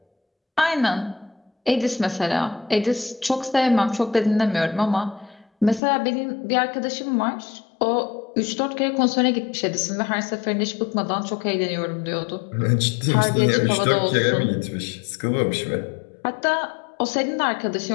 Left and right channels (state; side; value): drops out; right; at 5.8 s